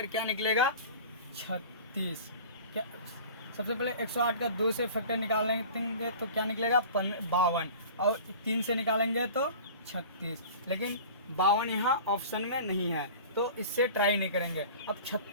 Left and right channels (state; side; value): inverted; both; correlation -0.40